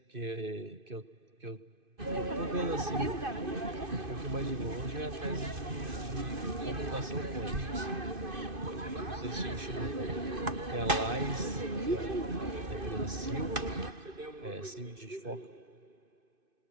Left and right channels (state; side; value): late; left; 2.5 ms